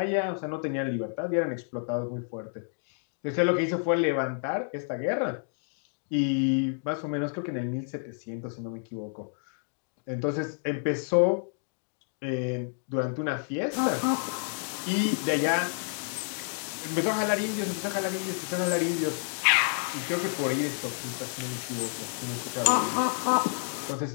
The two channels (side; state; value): right; silent; 58 dB below the other